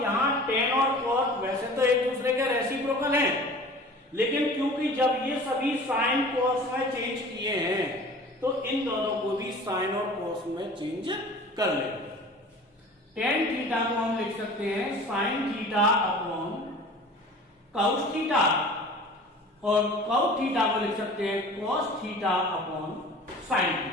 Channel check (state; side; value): normal; both; correlation 0.42